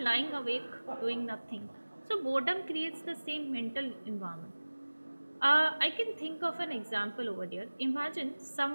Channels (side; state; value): both; inverted; correlation -1.00